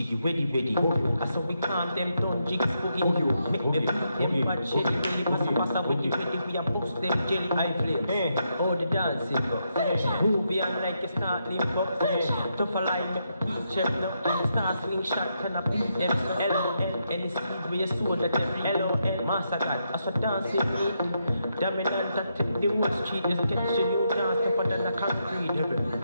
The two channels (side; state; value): both; inverted; correlation -0.81